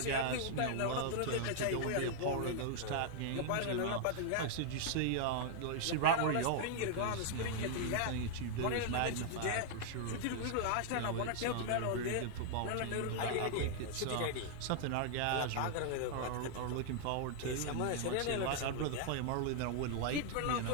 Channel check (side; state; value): both; different; correlation 0.00